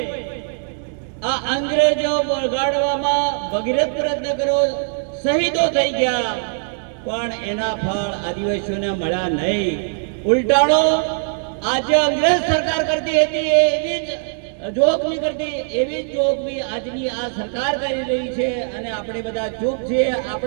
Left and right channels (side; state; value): left; silent; digital silence